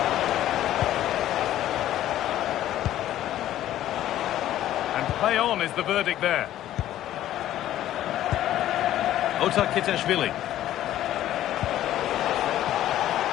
And play on is the verdict there. Kitashvili.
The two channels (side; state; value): right; quieter; 12.9 dB